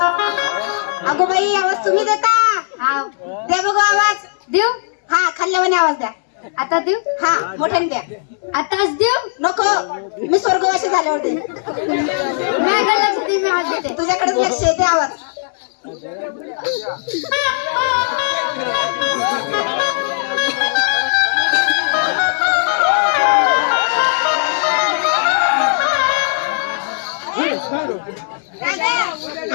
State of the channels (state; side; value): silent; right; digital silence